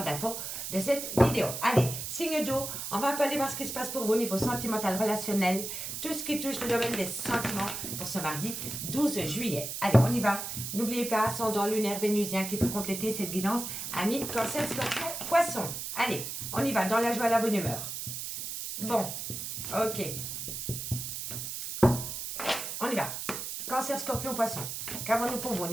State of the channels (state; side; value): noise; right; hiss, 6 dB below the sound